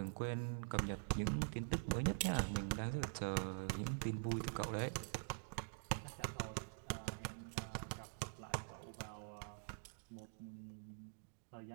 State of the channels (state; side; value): silent; left; digital silence